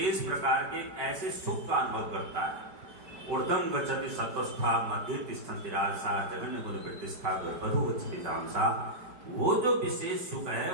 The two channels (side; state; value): left; late; 4.9 ms